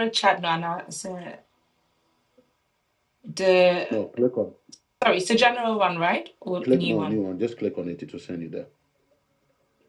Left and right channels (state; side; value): identical; both; correlation 1.00